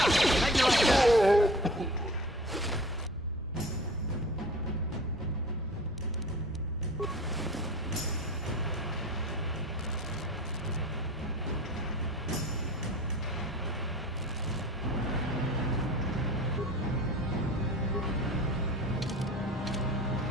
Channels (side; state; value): both; normal; correlation 0.41